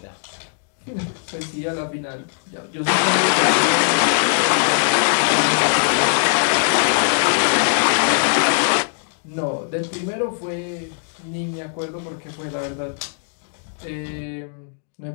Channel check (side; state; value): right; silent; digital silence